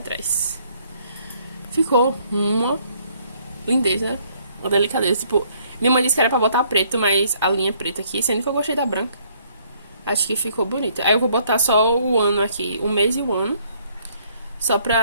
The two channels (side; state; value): both; inverted; correlation -0.65